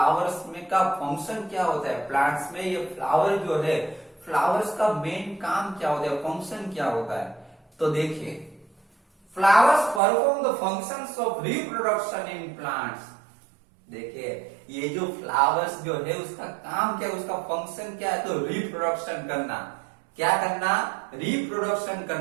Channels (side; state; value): left; drops out; at 10.0 s